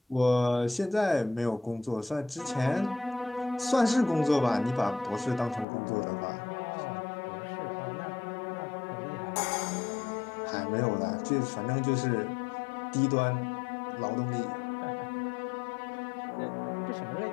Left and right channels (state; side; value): drops out; right; at 5.7 s